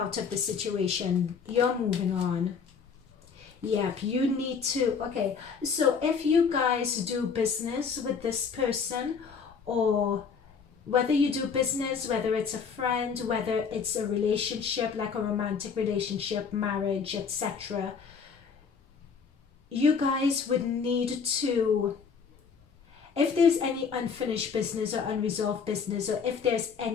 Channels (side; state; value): right; quieter; 6.0 dB